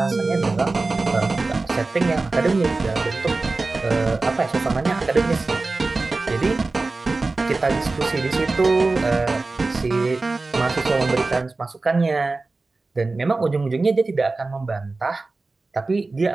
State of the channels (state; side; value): quieter; left; 3.5 dB